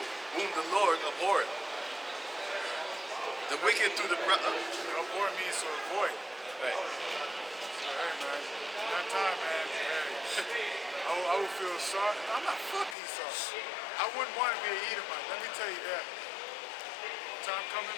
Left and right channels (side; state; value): right; drops out; at 13.0 s